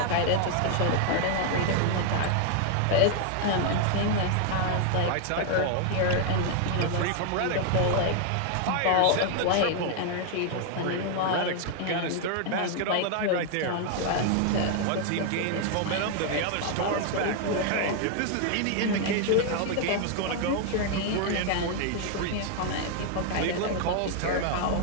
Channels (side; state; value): both; different; correlation 0.00